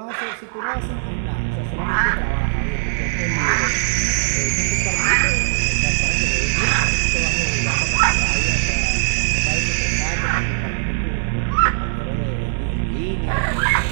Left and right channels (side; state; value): left; silent; 64 dB below the other